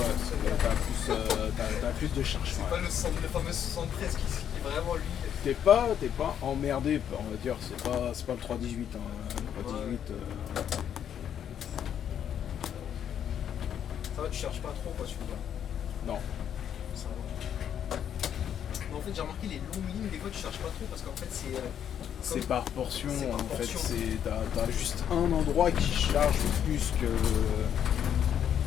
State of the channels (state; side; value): quieter; right; 9.2 dB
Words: t'as plus de charge. C'est pas le fameux 73 qui est vraiment lui. T'es pas emmerdé, on va dire, c'est pas le 318. Hein. Le 318. Ça va, tu cherches pas trop, quoi, tu veux dire. Non. Ça va. Mais en fait, j'ai remarqué les longues lignes, des fois, tu cherches pas trop parce qu'en fait, c'est par portion, en fait. portion. T'as juste un endroit qui charge plus que.